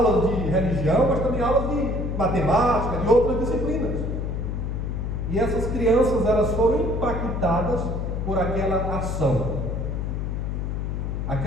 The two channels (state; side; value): noise; left; hum, 2 dB below the sound